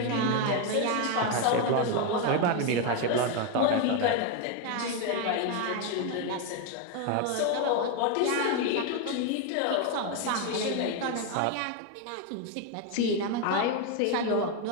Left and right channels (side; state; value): both; different; correlation 0.02